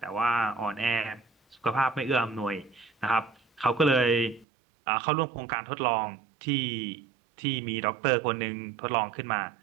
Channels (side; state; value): left; drops out; at 4.5 s